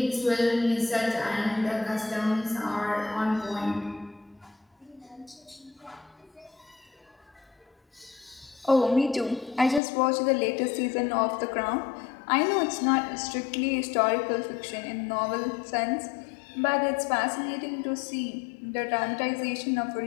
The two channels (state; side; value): drops out; right; at 9.8 s